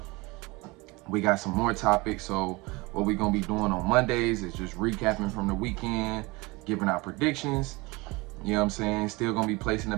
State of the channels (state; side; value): quieter; left; 24.2 dB